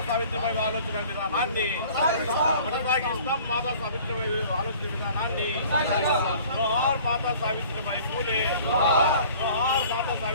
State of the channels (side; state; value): both; inverted; correlation -0.50